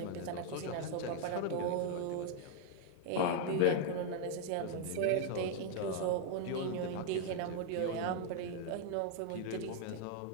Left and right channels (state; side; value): different; both; correlation 0.00